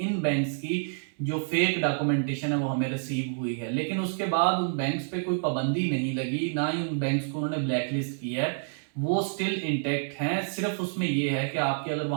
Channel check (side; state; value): left; silent; digital silence